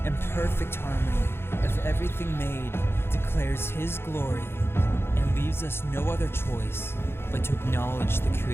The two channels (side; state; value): right; late; 0.11 ms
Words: and perfect harmony of everything made declares His glory and leaves us no other choice but to acknowledge the